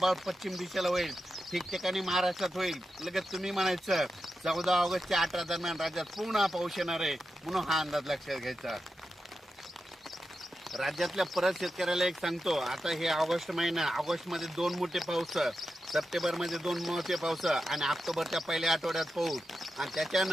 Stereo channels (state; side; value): normal; both; correlation 0.89